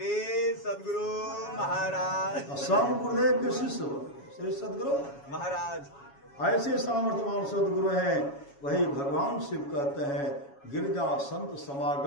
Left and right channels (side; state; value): right; late; 7.2 ms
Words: सदगुरु महाराज, सब गुरुदेव के शिष्य बने श्री सदगुरु महाराज। ऐसे सामर्थ्यवान सदगुरु हैं, वही भगवान शिव कहते हैं गिरजा संत